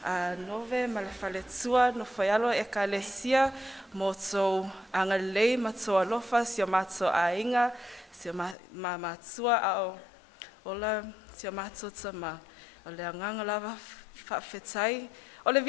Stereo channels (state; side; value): drops out; right; at 8.6 s